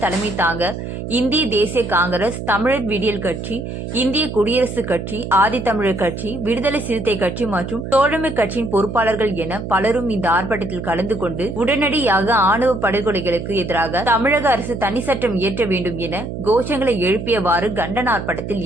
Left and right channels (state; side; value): noise; right; hum, 7 dB below the sound